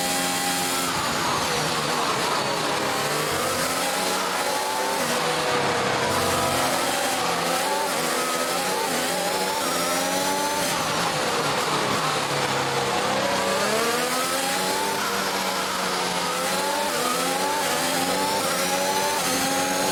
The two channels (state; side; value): identical; both; correlation 1.00